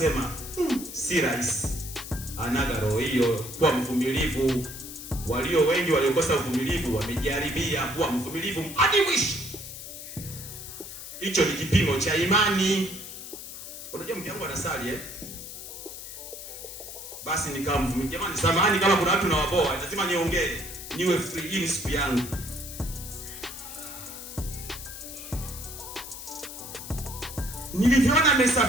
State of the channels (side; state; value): left; noise; hiss, 11 dB below the sound